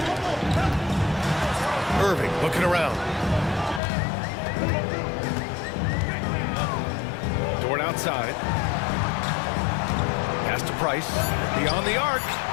Irving looking around. Dort outside. Pass to Price. Beyond the arc.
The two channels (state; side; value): drops out; right; at 3.8 s